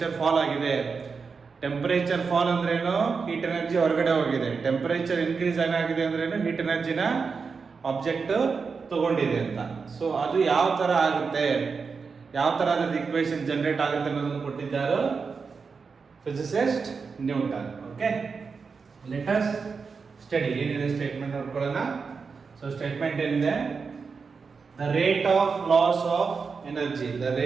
ಫಾಲ್ ಆಗಿದೆ. ಟೆಂಪರೇಚರ್ ಫಾಲ್ ಅಂದ್ರೆ ಏನು, ಹೀಟ್ ಎನರ್ಜಿ ಹೊರಗಡೆ ಹೋಗಿದೆ. ಟೆಂಪರೇಚರ್ ಇನ್ಕ್ರೀಸ್ ಏನಾಗಿದೆ ಅಂದ್ರೆ ಏನು, ಹೀಟ್ ಎನರ್ಜಿನ ಆಬ್ಜೆಕ್ಟ್ ತಗೊಂಡಿದೆ ಅಂತ. ಸೊ ಅದು ಯಾವ ತರ ಆಗುತ್ತೆ, ಯಾವ ತರ ಅದ್ರ ಈಕ್ವೇಶನ್ ಜನರೇಟ್ ಆಗುತ್ತೆ ಅನ್ನೋದನ್ನು ಕೊಟ್ಟಿದ್ದಾರೆ physicist Newton. Okay, let us study. ಏನಿದೆ ಸ್ಟೇಟ್ಮೆಂಟ್ ನೋಡ್ಕೊಳ್ಳೋಣ. ಸೊ ಸ್ಟೇಟ್ಮೆಂಟ್ ಏನಿದೆ, the rate of loss of energy, the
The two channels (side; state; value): left; quieter; 5.1 dB